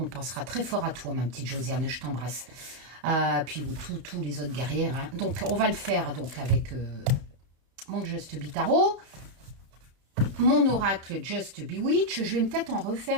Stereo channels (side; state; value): left; late; 31 ms